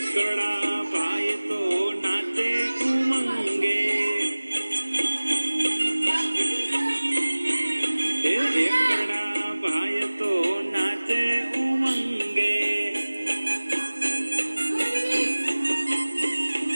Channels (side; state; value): both; inverted; correlation -1.00